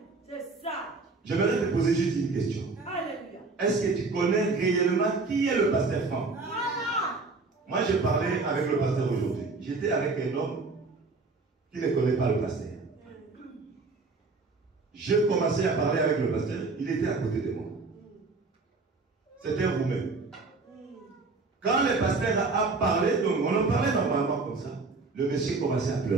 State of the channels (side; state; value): left; quieter; 3.8 dB